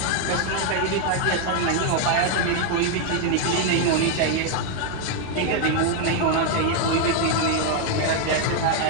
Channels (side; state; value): both; different; correlation 0.00